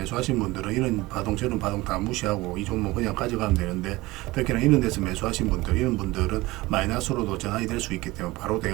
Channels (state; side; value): quieter; left; 20.2 dB